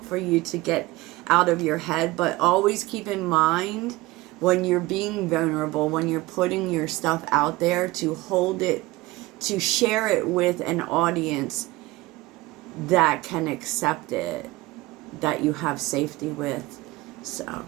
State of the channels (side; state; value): left; quieter; 19.8 dB